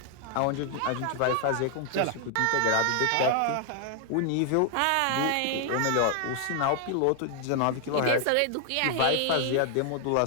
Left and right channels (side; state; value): both; different; correlation 0.00